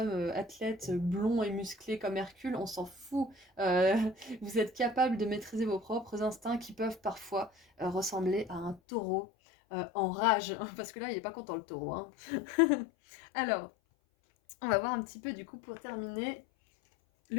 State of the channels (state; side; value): drops out; right; at 8.8 s